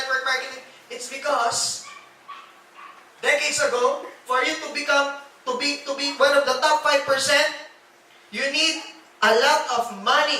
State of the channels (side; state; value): both; identical; correlation 1.00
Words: marketing. It's because decades ago, for you to become to be one of the top 5%, you need a lot of